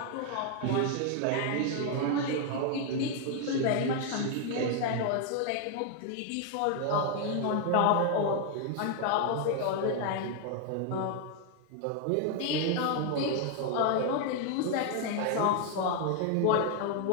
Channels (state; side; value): different; both; correlation 0.00